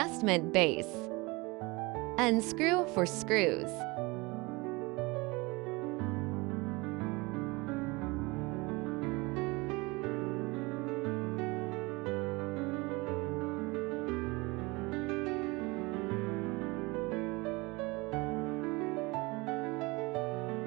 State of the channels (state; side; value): quieter; left; 24.7 dB